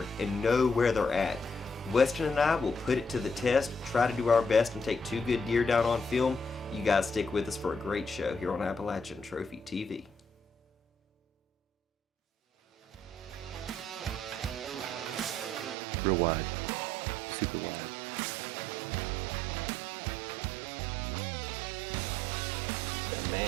and know where they're at. Weston and I will put it to the test, try to do our best and take 2 good deer down on film. You guys stick with us for a great show here on Appalachian Trophy TV. Real wide, super wide. Man.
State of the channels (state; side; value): drops out; left; at 15.8 s